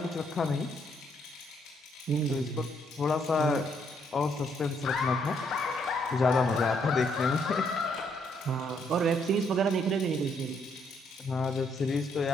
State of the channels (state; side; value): normal; both; correlation 0.71